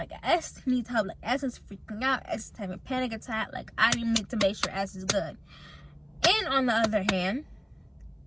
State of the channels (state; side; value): identical; both; correlation 1.00